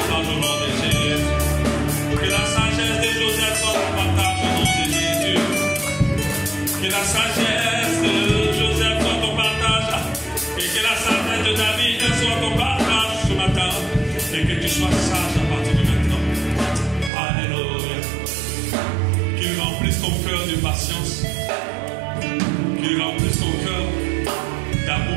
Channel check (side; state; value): left; drops out; at 17.1 s